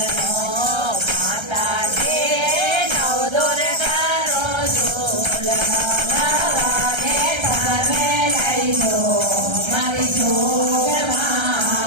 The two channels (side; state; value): left; late; 1.3 ms